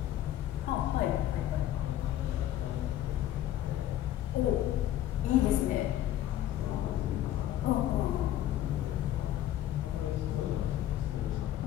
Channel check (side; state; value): right; quieter; 12.6 dB